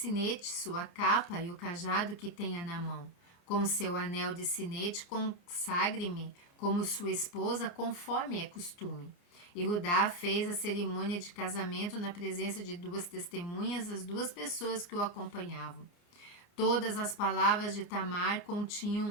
sua capa e o cajado que tenha na mão. Com seu anel de sinete, consagre-me como sua esposa, conforme é costume. Yehudá fez a cerimônia de casamento na presença de 2 testemunhas, as 2 pessoas que o acompanhavam. Todas as palavras de Tamar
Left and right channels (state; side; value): late; right; 29 ms